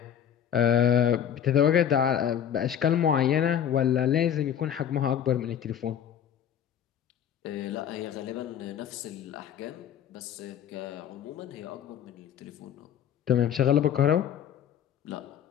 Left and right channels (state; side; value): quieter; right; 9.3 dB